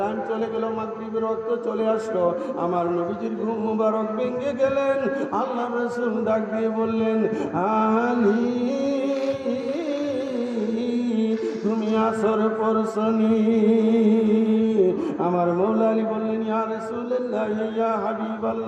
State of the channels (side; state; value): both; identical; correlation 1.00